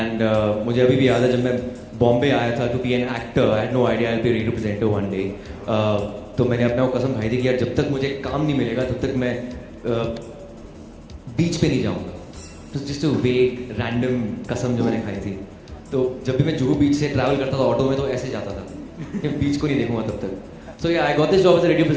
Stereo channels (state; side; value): identical; both; correlation 1.00